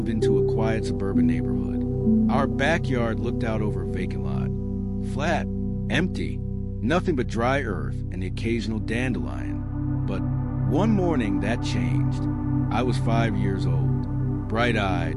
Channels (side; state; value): both; identical; correlation 1.00